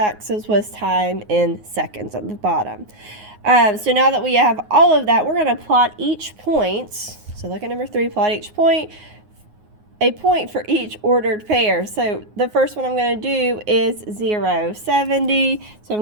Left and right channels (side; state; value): left; late; 9.5 ms